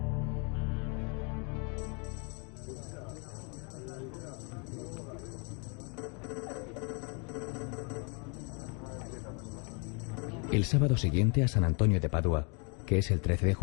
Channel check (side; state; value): right; quieter; 34.8 dB